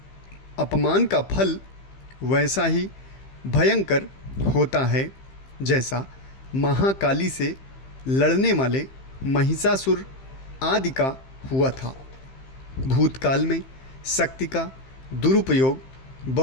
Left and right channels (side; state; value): right; late; 15 ms